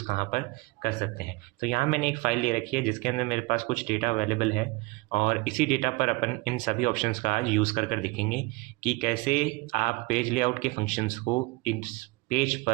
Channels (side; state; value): left; quieter; 23.8 dB